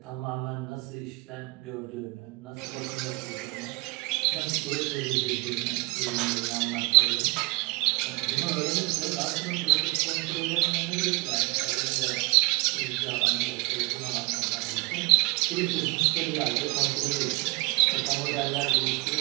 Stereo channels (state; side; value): quieter; left; 26.4 dB